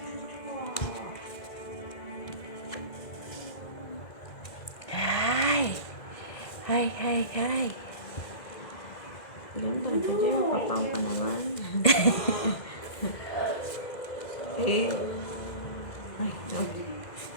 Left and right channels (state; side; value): late; right; 2.0 ms